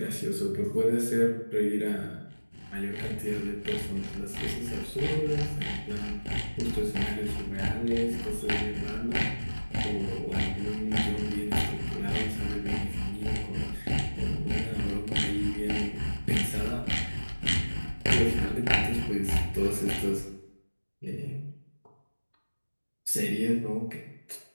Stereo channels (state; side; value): inverted; both; correlation -1.00